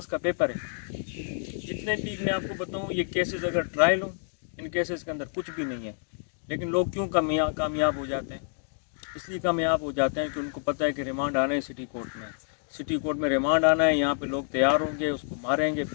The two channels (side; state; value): right; silent; digital silence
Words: کا پیپر ہے. جتنے بھی میں آپ کو بتاؤں یہ کیسز اگر ٹرائل ہوں ان کیسز کے اندر کچھ بھی نہیں ہے, لیکن لوگ کیوں کامیاب ہو جاتے ہیں؟ اس لیے کامیاب ہو جاتے ہیں کہ ان کو پتہ ہے کہ ریمانڈ آنا ہے سٹی کورٹ میں, سٹی کورٹ میں ریمانڈ آنا ہے, یہاں پہ لوگ تیار ہوں گے, اس کو ماریں گے,